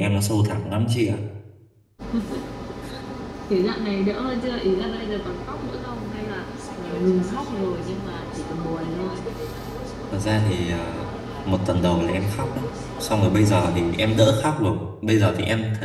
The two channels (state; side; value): identical; both; correlation 1.00